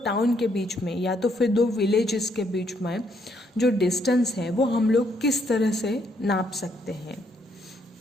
टाउन के बीच में या तो फिर दो विलेजेस के बीच में जो डिस्टेंस है वो हम लोग किस तरह से नाप सकते हैं।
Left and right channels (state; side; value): normal; both; correlation 0.72